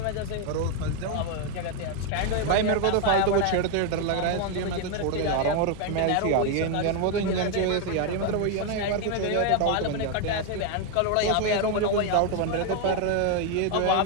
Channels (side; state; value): both; different; correlation 0.01